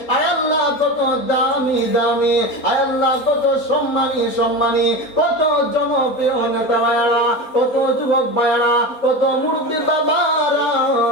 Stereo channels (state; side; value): late; right; 4.1 ms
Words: আয় আল্লাহ কত দামি দামি, আয় আল্লাহ কত সম্মানী সম্মানী, কত জনপ্রিয় নেতা ভাইয়ারা, কত যুবক ভাইয়ারা, কত মুরব্বী বাবারা,